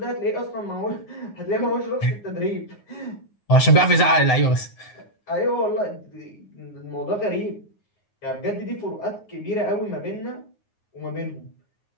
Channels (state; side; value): late; right; 9.5 ms